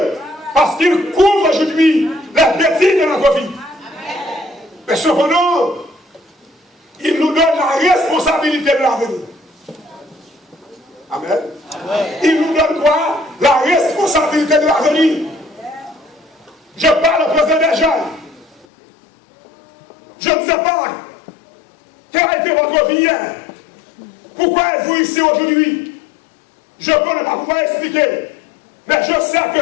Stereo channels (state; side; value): drops out; right; at 18.7 s